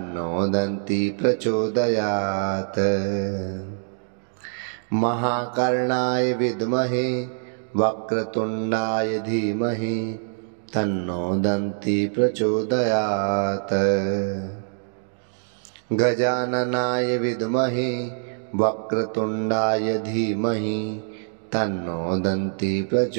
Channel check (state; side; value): silent; left; digital silence